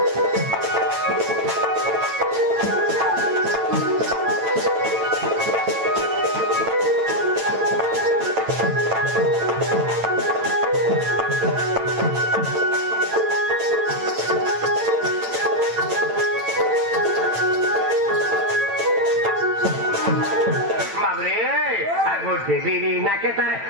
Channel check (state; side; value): late; left; 9.0 ms